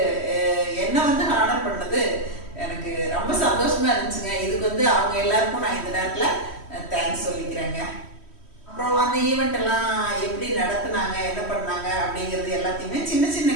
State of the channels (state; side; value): late; right; 3.1 ms